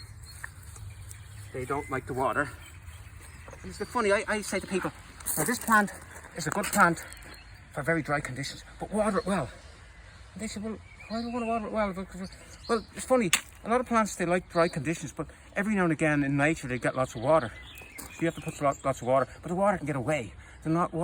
they don't like the water. And it's funny, I say to people, now this plant is a good plant for very dry conditions, but water it well. And they say, well, why do I want to water it well? Well, it's funny, a lot of plants, they like dry conditions, but every now and again in nature they get lots of water. So you have to put lots of water, but the water can get away.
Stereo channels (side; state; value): both; identical; correlation 1.00